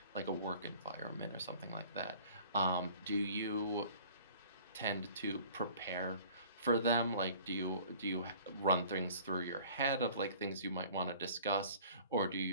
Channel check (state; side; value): inverted; both; correlation -0.49